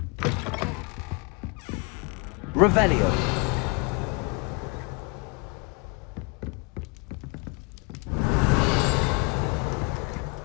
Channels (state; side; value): quieter; right; 29.6 dB